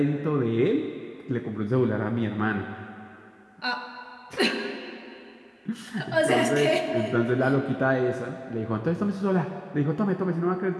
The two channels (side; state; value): both; identical; correlation 1.00